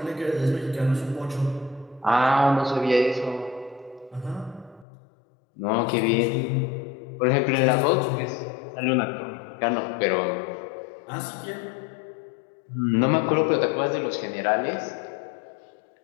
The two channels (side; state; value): right; drops out; at 4.9 s